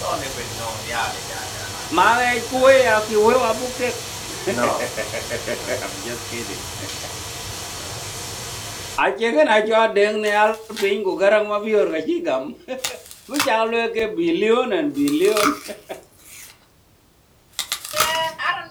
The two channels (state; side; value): identical; both; correlation 1.00